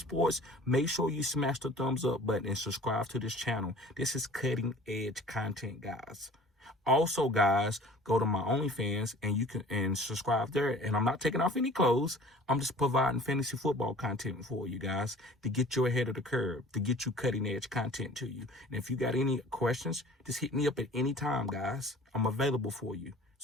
Make sure you smash the thumbs up button and subscribe to this channel. This is cutting-edge content, guys. Also, guys, go to my OnlyFans and you can subscribe there. And I'm not taking off any clothes. I'm just providing fantasy football content for you guys to get you ahead of the curve, to get you cutting-edge content to you. And if you got any questions, just hit me up at any time, guys. I'm available for you.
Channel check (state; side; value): normal; both; correlation 0.47